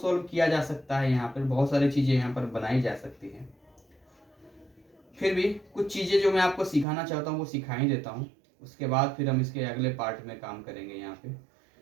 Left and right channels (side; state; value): left; drops out; at 6.9 s